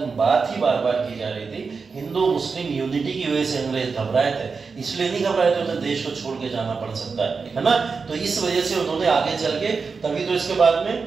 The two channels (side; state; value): left; quieter; 4.9 dB